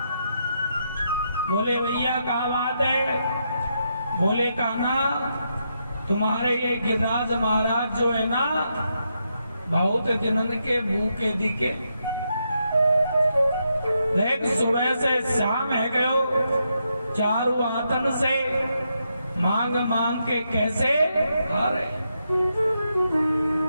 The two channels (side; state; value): both; inverted; correlation -0.81